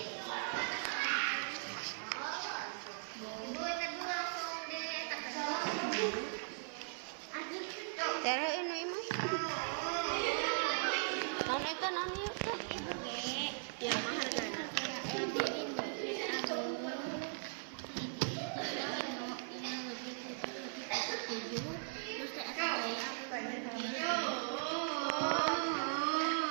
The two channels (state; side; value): silent; left; 52 dB below the other